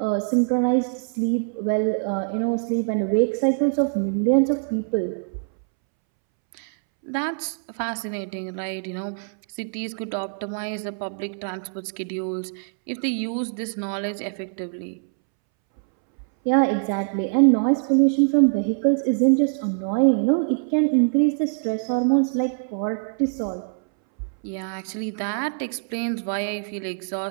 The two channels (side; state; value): left; silent; 63 dB below the other